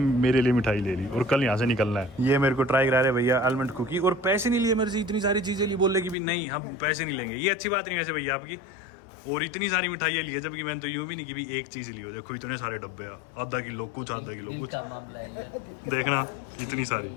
लिए मिठाई ले ली, और कल यहाँ से निकलना है। ये मेरे को ट्राई करा रहे भैया आलमंड कुकी, और पैसे नहीं लिए मेरे से, इतनी सारी चीज़ें ली। बोले कि भी नहीं, हम पैसे नहीं लेंगे। ये अच्छी बात नहीं वैसे भैया आपकी। और इतनी सारी मिठाइयाँ ली है, जबकि मैंने तो यूँ भी नहीं कि भी एक चीज़ ली हो। देखो इतने सारे डब्बे, आधा किलो कुछ, आधा किलो कुछ, देखना इतनी सारी।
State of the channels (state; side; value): drops out; right; at 6.2 s